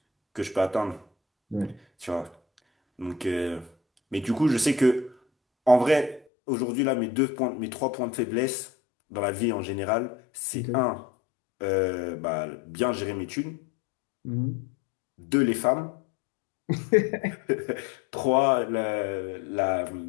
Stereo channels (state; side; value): drops out; right; at 6.2 s